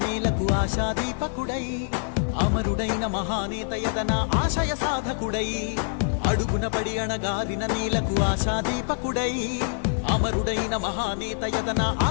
నేలకు ఆశాదీపకుడై అమరుడైన మహానేత యతన ఆశయ సాధకుడై అడుగున పడి అణగారిన నేలకు ఆశాదీపకుడై అమరుడైన మహానేత యతన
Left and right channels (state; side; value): silent; right; digital silence